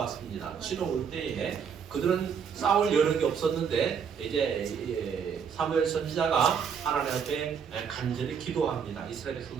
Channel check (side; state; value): left; quieter; 7.0 dB